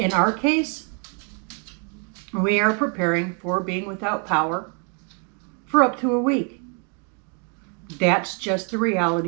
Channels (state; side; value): quieter; left; 38.6 dB